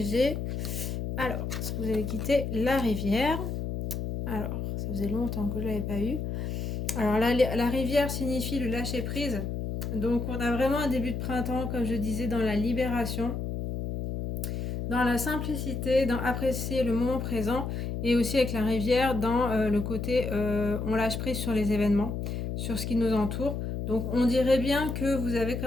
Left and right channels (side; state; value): left; noise; hum, 3 dB below the sound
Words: Alors, ce que vous allez quitter, la rivière. Alors, ça faisait longtemps que je ne l'avais pas eu. Alors, la rivière signifie le lâcher prise. Donc, on a vraiment un début de printemps, comme je disais, dans la libération, dans la simplicité, dans apprécier le moment présent, et aussi avec la rivière, dans le côté on lâche prise sur les événements, sur ce qui nous entoure. Donc on dirait bien que vous avez